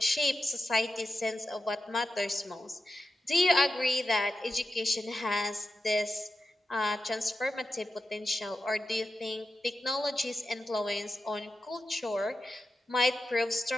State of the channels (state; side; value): normal; both; correlation 0.90